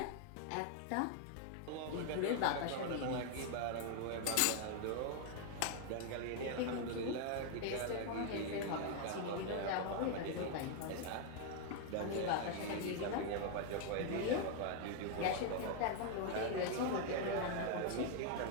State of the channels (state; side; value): different; both; correlation 0.00